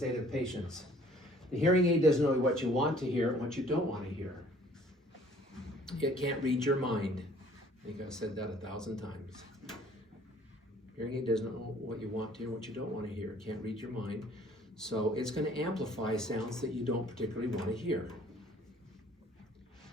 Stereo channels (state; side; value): normal; both; correlation 0.56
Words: to patients? The hearing aid doesn't know what you want to hear and what you don't want to hear. It can't read your mind. I think I've said that 1,000 times. Hearing aid doesn't know what you want to hear and what you don't want to hear. It can't read your mind. So it's going to amplify sounds that you don't particularly want to hear.